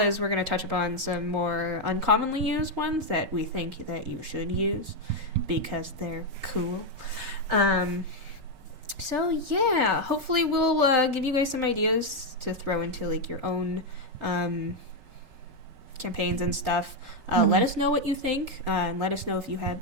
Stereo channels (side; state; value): left; late; 5.2 ms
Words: we're going to touch upon some more uncommonly used ones that we think that you should use because they're cool. So yeah, hopefully we'll give you guys some ideas to throw into like your own campaigns and stuff. Let us know what you think, and let us know if you have